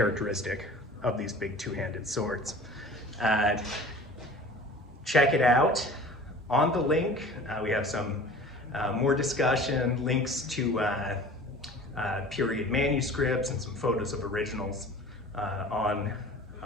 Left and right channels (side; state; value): both; normal; correlation 0.43